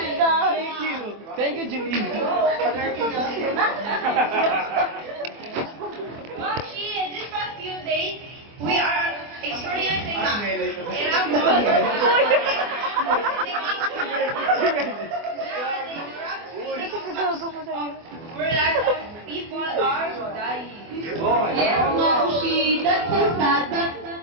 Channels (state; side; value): late; left; 24 ms